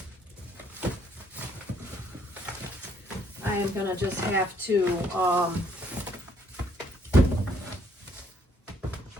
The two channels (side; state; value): both; normal; correlation 0.67